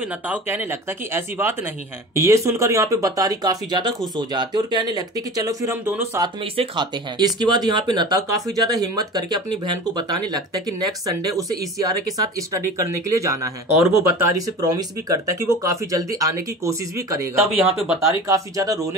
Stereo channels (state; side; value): normal; both; correlation 0.36